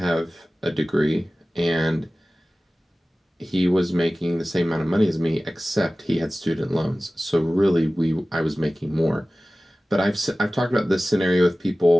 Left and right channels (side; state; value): both; normal; correlation 0.97